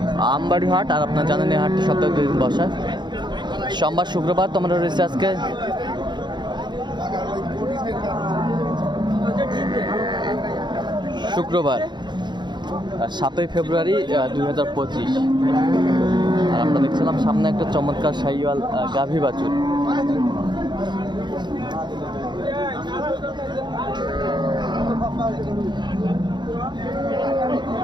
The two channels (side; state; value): left; late; 0.22 ms